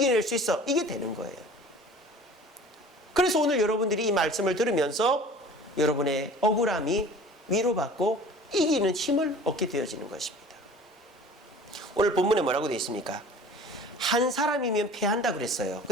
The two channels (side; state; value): both; normal; correlation 0.44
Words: 수 있어, 이게 되는 거예요. 그래서 오늘 여러분들이 이 말씀을 들으면서 여러분의 억울함이 위로받고 이기는 힘을 얻게 되어지는 것입니다. 오늘 본문에 뭐라고 되어 있습니까? 한 사람이면 패한다 그랬어요.